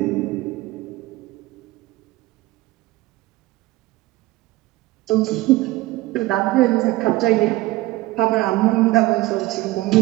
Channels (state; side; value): quieter; left; 18.8 dB